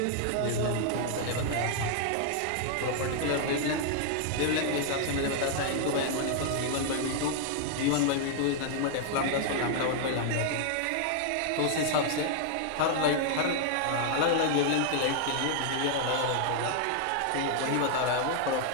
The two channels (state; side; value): different; both; correlation 0.00